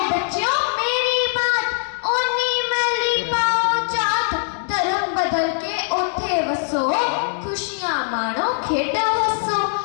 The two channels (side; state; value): right; silent; digital silence